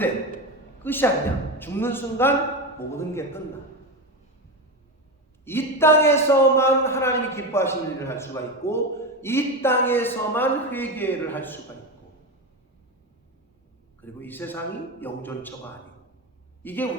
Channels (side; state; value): both; normal; correlation 0.18